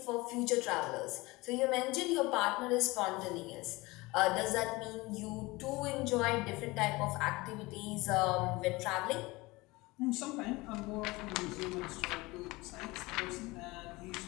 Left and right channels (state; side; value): quieter; right; 22.2 dB